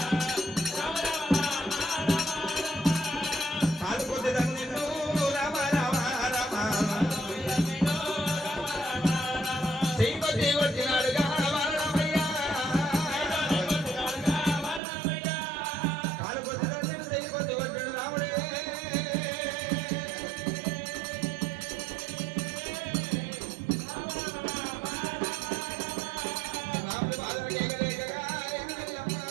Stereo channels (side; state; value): left; drops out; at 14.8 s